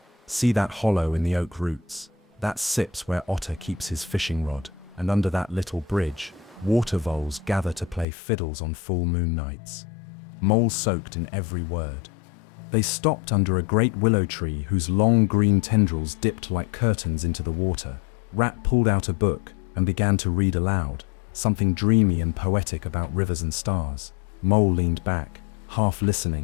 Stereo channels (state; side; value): drops out; right; at 8.1 s